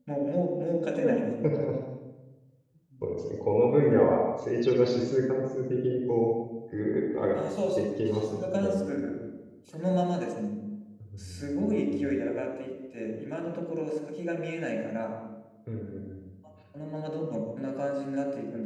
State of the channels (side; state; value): both; identical; correlation 1.00